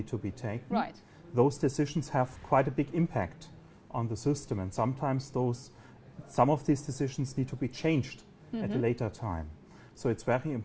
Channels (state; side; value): identical; both; correlation 1.00